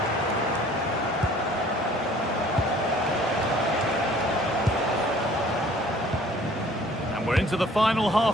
And we're into the final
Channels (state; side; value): normal; both; correlation 0.54